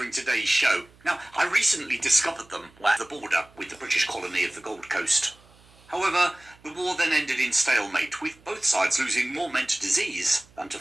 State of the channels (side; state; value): right; noise; hum, 28 dB below the sound